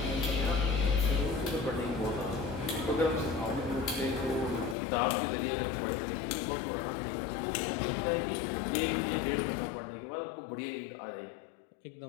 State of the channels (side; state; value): right; drops out; at 4.8 s